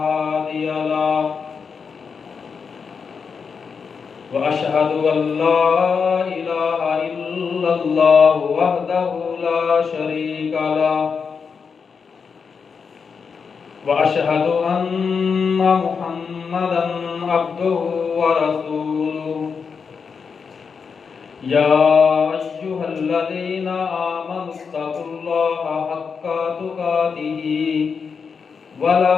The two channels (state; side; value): quieter; right; 5.8 dB